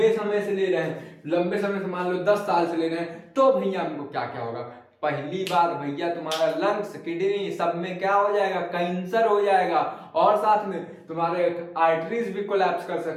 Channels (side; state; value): both; identical; correlation 1.00